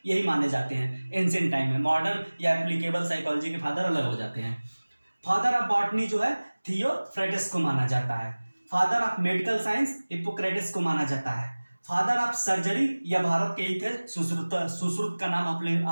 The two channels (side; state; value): both; inverted; correlation -1.00